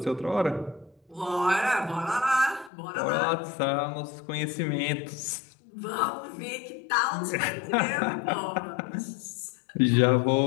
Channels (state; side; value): drops out; right; at 2.7 s